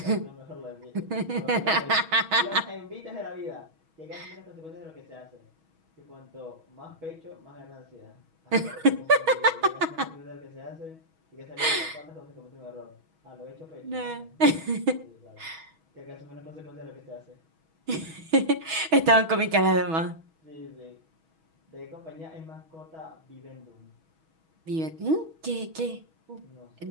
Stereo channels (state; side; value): late; left; 6.2 ms